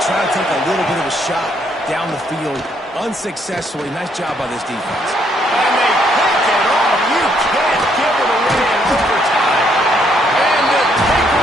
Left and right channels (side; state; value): both; normal; correlation 0.71